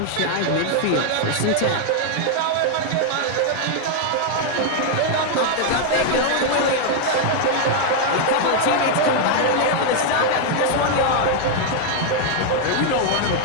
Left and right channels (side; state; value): both; different; correlation 0.00